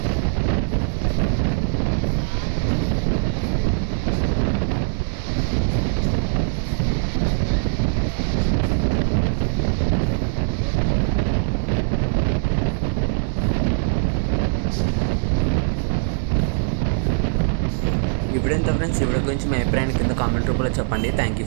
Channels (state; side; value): silent; left; 65 dB below the other